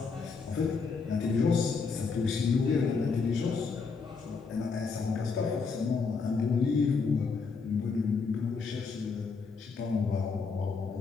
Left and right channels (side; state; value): right; quieter; 5.0 dB